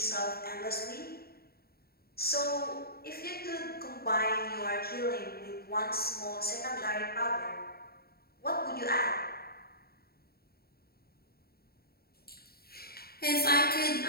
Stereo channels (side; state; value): right; late; 0.45 ms